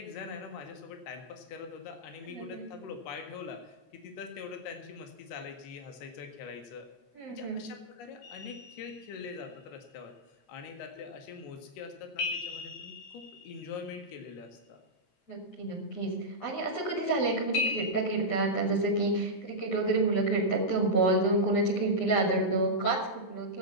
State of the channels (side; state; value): right; late; 11 ms